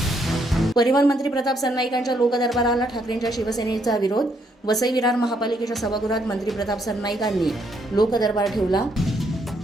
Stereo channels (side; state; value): both; normal; correlation 0.73